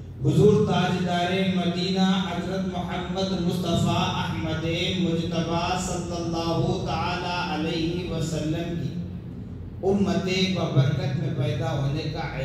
حضور تاجدار مدینہ حضرت محمد مصطفیٰ احمد مجتبیٰ صلی اللہ تعالی علیہ وسلم کی امت ببرکت میں پیدا ہونے کا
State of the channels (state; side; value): identical; both; correlation 1.00